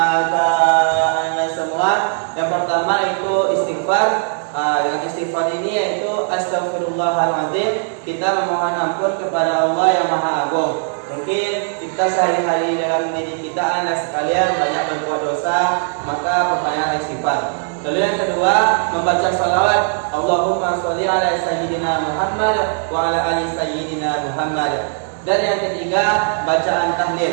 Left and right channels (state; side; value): silent; left; 66 dB below the other